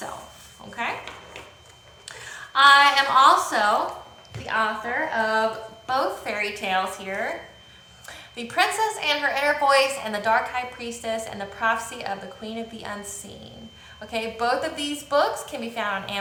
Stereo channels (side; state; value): both; identical; correlation 1.00